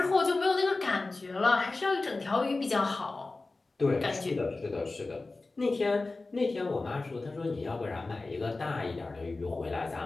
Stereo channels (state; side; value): quieter; right; 3.4 dB